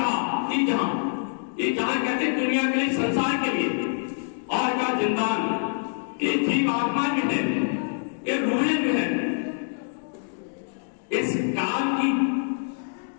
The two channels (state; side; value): silent; right; digital silence